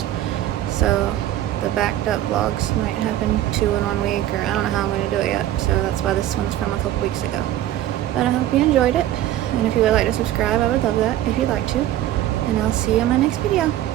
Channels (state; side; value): quieter; left; 13.1 dB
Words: So the backed up vlogs might happen 2 in 1 week, or I don't know how I'm going to do it yet. So that's why this one's from a couple weeks ago. But I hope you enjoyed it. And if you would like to subscribe, I would love that if you'd like to. And I'll see you in my next video.